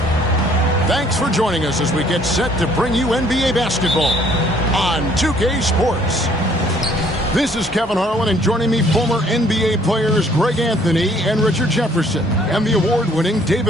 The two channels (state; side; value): normal; both; correlation 0.60